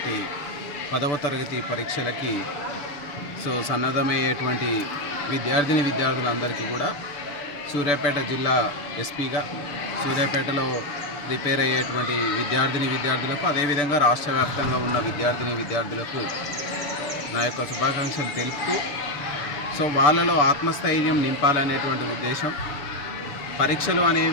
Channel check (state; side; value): late; right; 6.9 ms